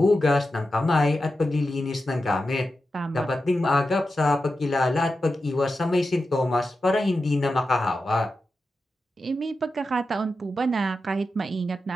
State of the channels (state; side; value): normal; both; correlation 0.90